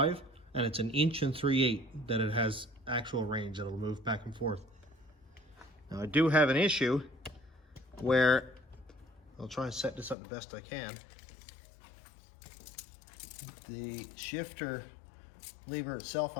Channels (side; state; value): right; drops out; at 10.2 s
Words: and it's 1 3/8 inches that it has actual range that'll move back and forth. Now I do have an issue where I'll try and set this up the best I can. The shifter lever itself